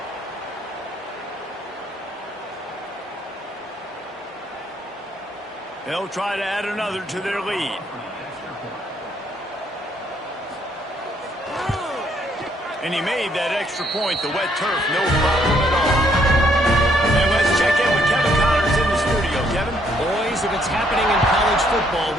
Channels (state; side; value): normal; both; correlation 0.69